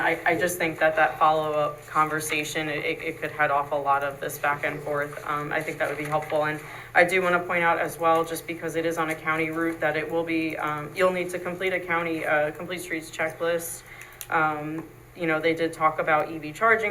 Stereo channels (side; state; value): both; identical; correlation 1.00